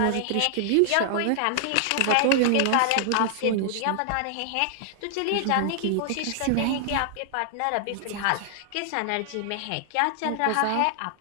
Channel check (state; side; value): different; both; correlation -0.01